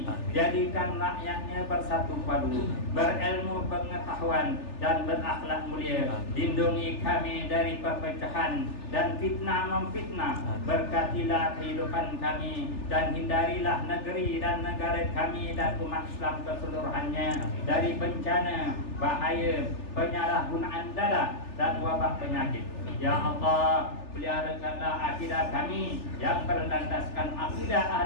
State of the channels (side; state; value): right; late; 3.4 ms